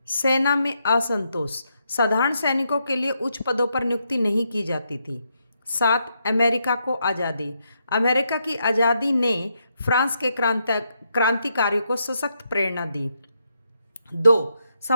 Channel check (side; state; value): both; inverted; correlation -0.80